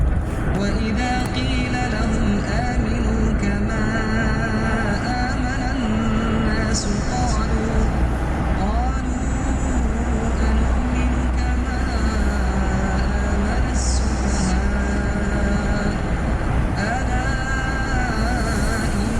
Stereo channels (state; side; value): identical; both; correlation 1.00